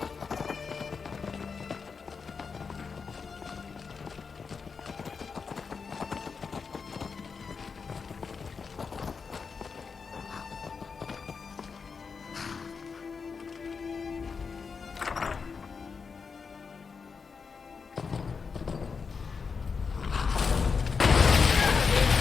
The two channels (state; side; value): quieter; right; 5.4 dB